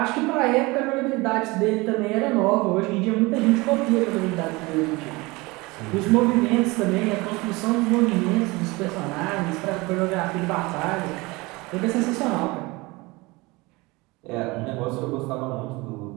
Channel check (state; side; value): quieter; left; 23.5 dB